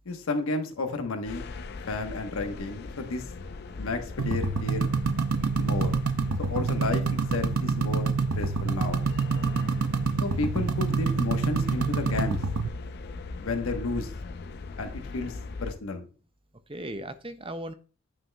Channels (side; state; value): both; normal; correlation 0.54